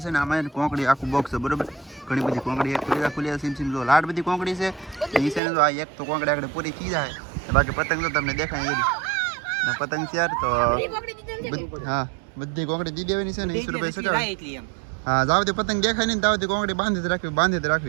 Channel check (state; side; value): drops out; left; at 5.4 s